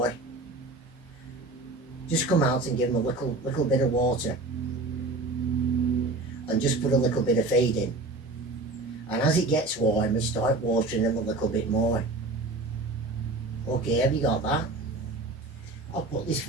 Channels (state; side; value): quieter; left; 3.1 dB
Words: just come out and give them a little bit of water. And just put a little bit of feed in. And as it gets warmer, start watering them a little bit more. Okay, have you got that? I'll put this